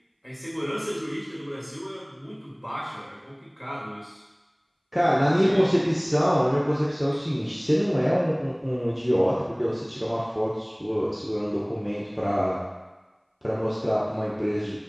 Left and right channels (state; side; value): identical; both; correlation 1.00